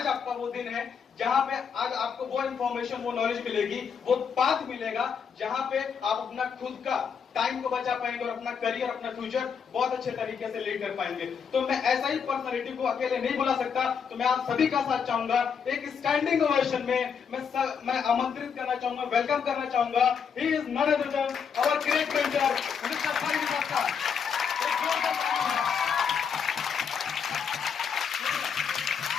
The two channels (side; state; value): right; quieter; 6.7 dB